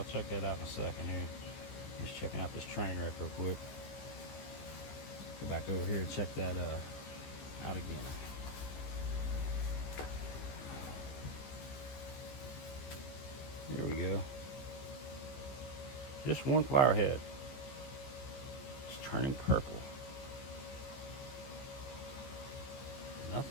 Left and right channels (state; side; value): late; right; 14 ms